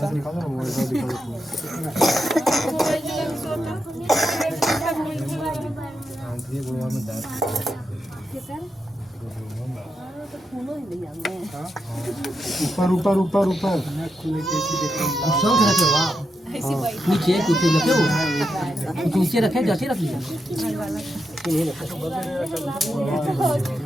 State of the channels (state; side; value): normal; both; correlation 0.85